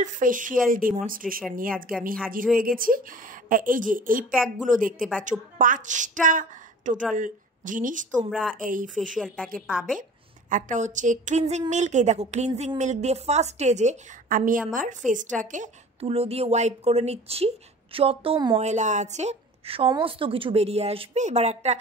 ফেসিয়াল ডেমনস্ট্রেশন নিয়ে আজকে আমি হাজির হয়ে গেছি। এই যে এই প্যাকগুলো দেখতে পাচ্ছ, 5টা টোটাল জিনিস তোমরা এই ফেসিয়াল প্যাকে পাবে। একটা হচ্ছে ক্লিনজিং মিল্ক। এই দেখো, ক্লিনজিং মিল্ক দিয়ে ফার্স্ট স্টেজে আমি আমার ফেসটাকে তুলো দিয়ে ওয়াইপ করে নিচ্ছি। যত ময়লা আছে সমস্ত কিছু বেরিয়ে আসবে। এবার একটা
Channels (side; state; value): both; normal; correlation 0.43